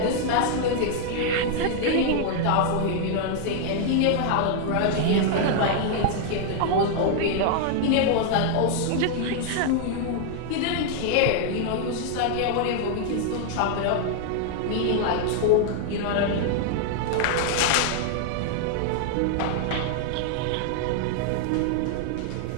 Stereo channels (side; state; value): both; different; correlation 0.00